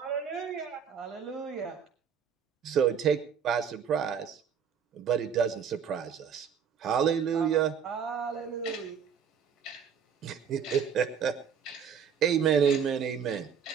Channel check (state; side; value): quieter; left; 7.3 dB